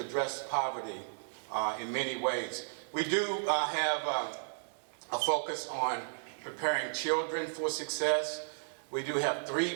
poverty in many ways. We do have a focus on preparing children for success. We do have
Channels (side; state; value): left; silent; 55 dB below the other